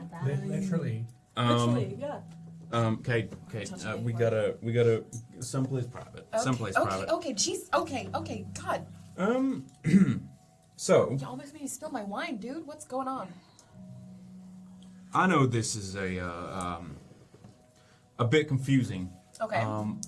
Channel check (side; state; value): both; identical; correlation 1.00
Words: Literally. Literally, yeah. Kate, we gotta someplace private. Someplace private. Okay, jeez. Okay, God. So You almost made me spill my wine, dude. What's going on? I know this is a bit confusing. Okay.